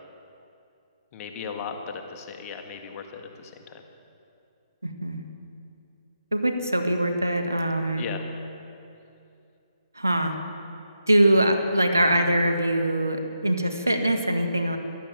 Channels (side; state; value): both; inverted; correlation -0.85